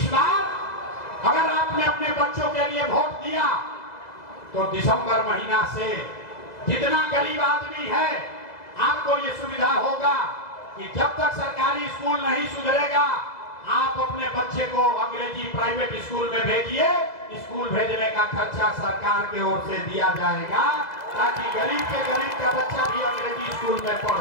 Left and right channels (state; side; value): late; right; 2.0 ms